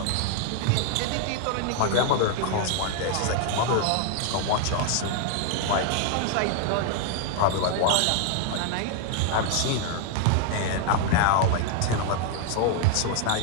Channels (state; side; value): different; both; correlation 0.00